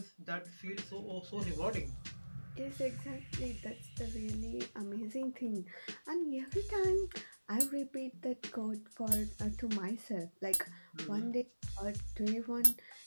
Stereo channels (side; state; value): both; inverted; correlation -1.00